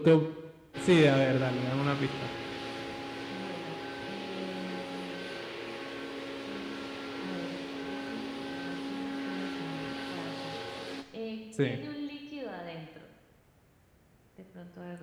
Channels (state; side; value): identical; both; correlation 1.00